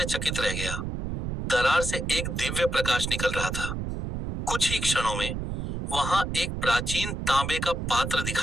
रह गया। दरार से एक दिव्य प्रकाश निकल रहा था। कुछ ही क्षणों में वहां एक प्राचीन तांबे का पात्र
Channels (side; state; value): right; noise; rumble, 4 dB below the sound